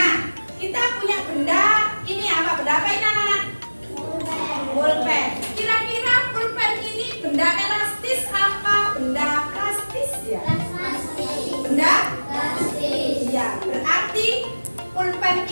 kita punya benda ini apa? Benda apa ini anak-anak? Pulpen. Kira-kira pulpen ini benda elastis apa benda plastis ya? Elastis. Benda? Elastis. Iya, berarti pulpen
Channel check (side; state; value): both; inverted; correlation -1.00